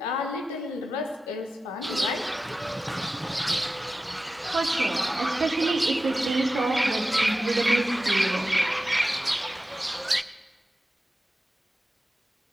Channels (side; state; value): both; normal; correlation 0.93